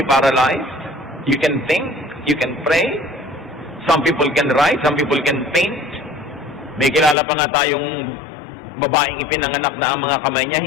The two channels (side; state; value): right; drops out; at 7.2 s